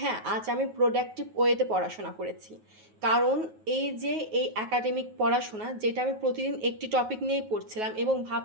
আজ আমি প্রোডাক্টিভ ওয়েতে পড়াশোনা করেছি। কারণ এই যে এই একাডেমিক পড়াশোনা যেটা আমি প্রতিদিন একটি টপিক নিয়েই পড়ছিলাম এবং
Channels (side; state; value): left; late; 9.4 ms